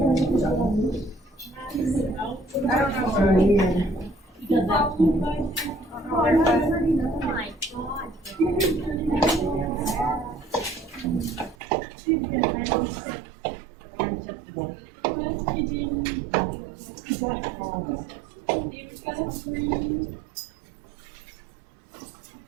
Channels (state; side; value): drops out; left; at 11.6 s